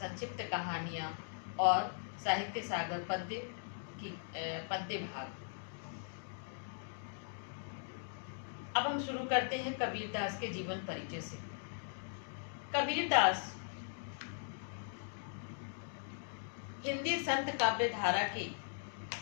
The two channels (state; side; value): silent; right; digital silence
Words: कहानियां और साहित्य सागर पद्य भाग। अब हम शुरू करते हैं कबीर दास के जीवन परिचय से। कबीर दास हिंदी संत काव्य धारा के